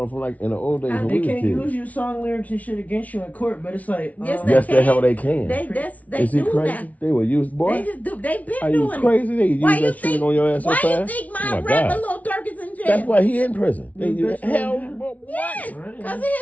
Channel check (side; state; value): right; late; 0.070 ms